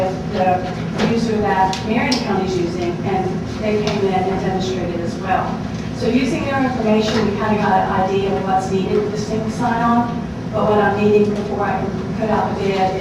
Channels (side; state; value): both; identical; correlation 1.00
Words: the user that Marion County is using, and they came in and demonstrated as well. So using their information, we kind of got an idea of what's needed with the single sign-on, but what I'm needing before I can put out the